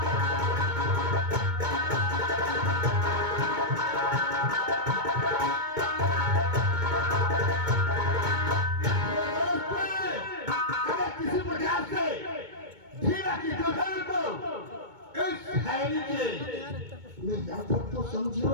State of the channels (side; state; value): left; late; 2.2 ms